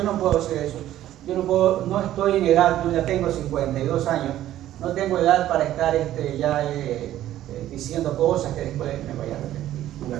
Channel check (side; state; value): left; quieter; 13.1 dB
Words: no puedo hacer eso. No estoy en edad, yo ya tengo 52 años, no tengo edad para estar diciendo cosas que después me vaya a arrepentir. De